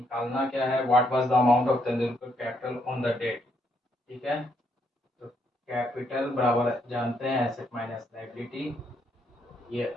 क्या है? What was the amount of Tendulkar capital on the date, ठीक है। तो कैपिटल बराबर जानते हैं एसेट माइनस लायबिलिटी, ये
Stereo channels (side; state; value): both; normal; correlation 0.74